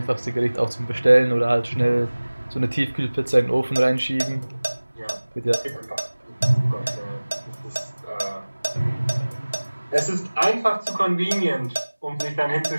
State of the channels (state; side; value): inverted; both; correlation -1.00